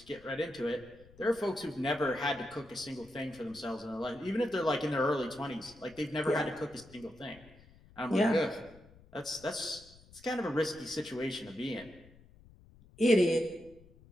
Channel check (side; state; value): left; noise; rumble, 24 dB below the sound